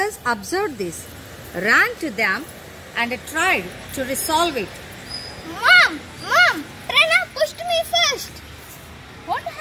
observed this, ran to them and tried to resolve it. Mom! Pranav pushed me first. What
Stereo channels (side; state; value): both; identical; correlation 1.00